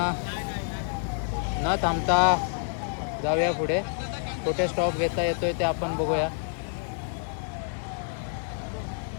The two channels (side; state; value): right; silent; 59 dB below the other